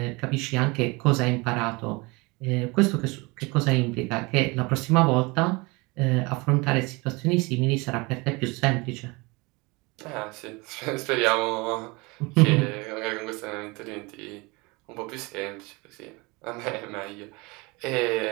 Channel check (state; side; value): quieter; left; 25.8 dB